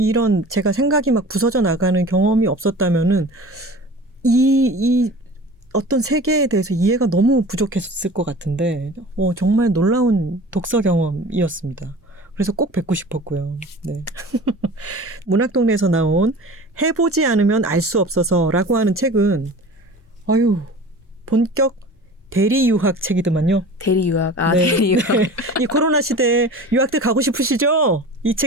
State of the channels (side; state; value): both; normal; correlation 0.39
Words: 제가 생각이 막 부서져 나가는 경험이 없었다면은 이 어떤 세계에 대해서 이해가 너무 부족했을 것 같은데 정말 놀라운 독서 경험이었습니다. 그래서 꼭 뵙고 싶었고요. 네. 문학동네에서 나온 해보지 않으면 알 수 없어서라고 하는 책은 본격 대리 유학 책이더만요. 대리 유학. 네. 대리 유학. 네. 이 코로나 시대에 유학들 가고 싶으시죠? 이